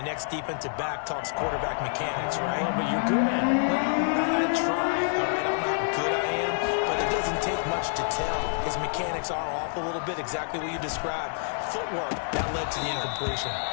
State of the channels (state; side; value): silent; right; digital silence